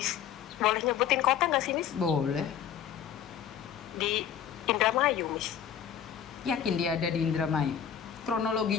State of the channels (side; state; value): right; quieter; 9.0 dB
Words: boleh nyebutin kota nggak sih Miss? Boleh. Di Indramayu Miss. Yakin dia ada di Indramayu?